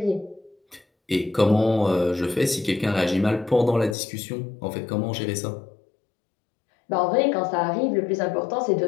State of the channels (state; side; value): drops out; right; at 4.0 s